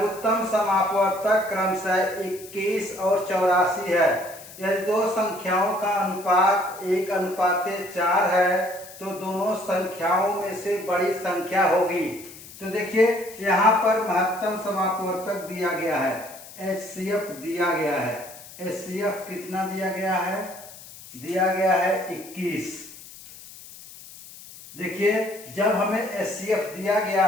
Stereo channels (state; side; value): noise; left; hiss, 17 dB below the sound